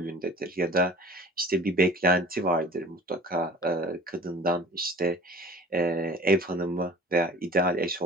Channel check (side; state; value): both; normal; correlation 0.43